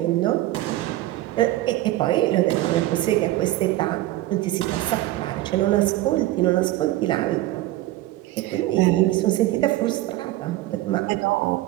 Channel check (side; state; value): left; quieter; 16.3 dB